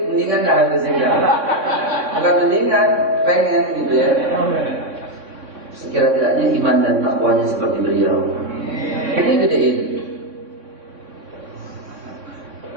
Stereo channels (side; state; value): left; late; 3.6 ms